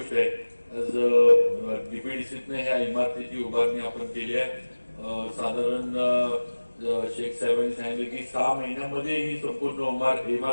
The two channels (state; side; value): inverted; both; correlation -1.00